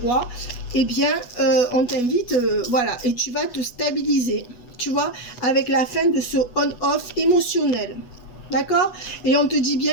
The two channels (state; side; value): late; right; 8.2 ms